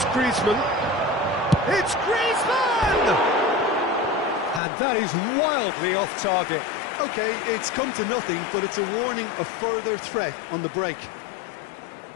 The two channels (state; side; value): drops out; right; at 4.6 s